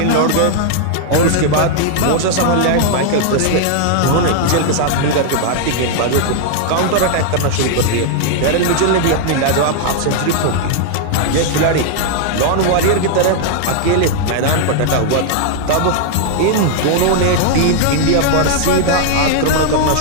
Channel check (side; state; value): both; different; correlation 0.00